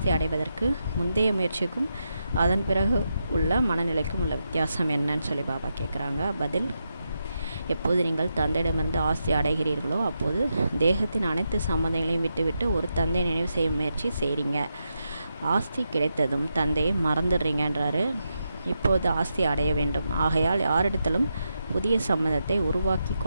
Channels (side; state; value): both; inverted; correlation -0.85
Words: அடைவதற்கு முந்தைய முயற்சிக்கும் அதன் பிறகு உள்ள மனநிலைக்கும் உள்ள வித்தியாசம் என்னன்னு சொல்லி பாபா கேட்குறாங்க. பதில்: எப்போது நீங்கள் தந்தையிடமிருந்து ஆஸ்தி அடைகிறீர்களோ அப்போது தேகத்தின் அனைத்து சம்பந்தங்களையும் விட்டுவிட்டு ஒரு தந்தை நினைவு செய்யும் முயற்சி செய்கிறீங்க. ஆஸ்தி கிடைத்ததும் தந்தையை மறந்துடுறீங்கன்றாரு. இப்போது ஆஸ்தி அடைய வேண்டும், ஆகையால் யாரிடத்திலும் புதிய சம்பந்தத்தை உருவாக்கி